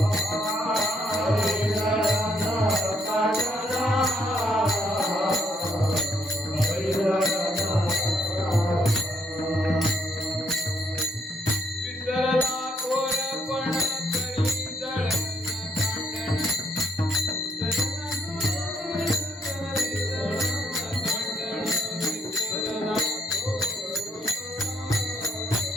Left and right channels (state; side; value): normal; both; correlation 0.72